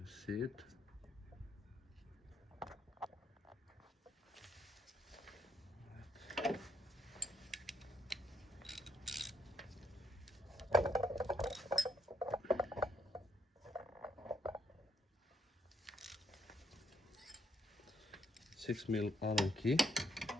see it. Six mil Allen key.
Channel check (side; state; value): both; normal; correlation 0.72